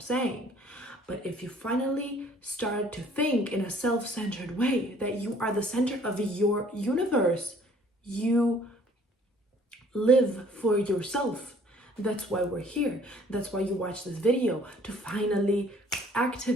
saying. But if you finally start to think in a self-centered way that you are the center of your universe, you live for yourself. That's why we're here. That's why you watch this video, to finally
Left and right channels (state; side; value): normal; both; correlation 0.57